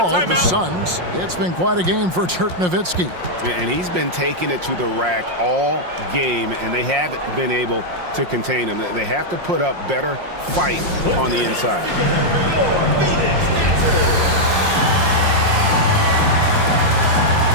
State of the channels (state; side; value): late; left; 5.6 ms